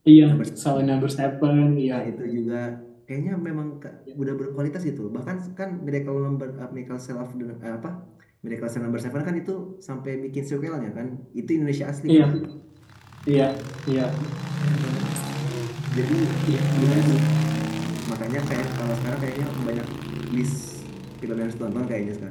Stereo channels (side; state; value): both; identical; correlation 1.00